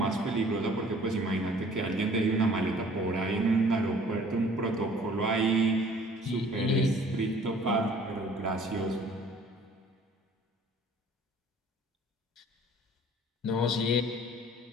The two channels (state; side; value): normal; both; correlation 0.53